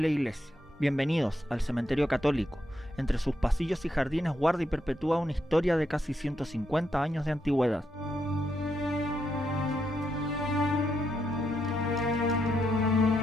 Iglesia. Bienvenidos al Cementerio Católico. Entre sus pasillos y jardines guarda y perpetúa una historia de casi 150 años de antigüedad.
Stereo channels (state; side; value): normal; both; correlation 0.81